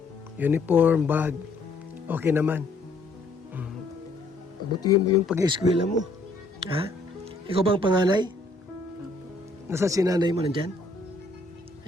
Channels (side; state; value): right; quieter; 3.1 dB